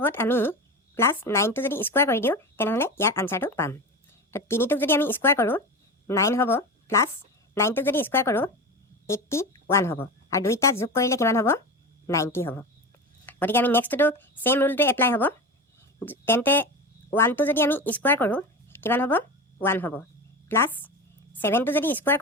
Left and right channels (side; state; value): both; normal; correlation 0.26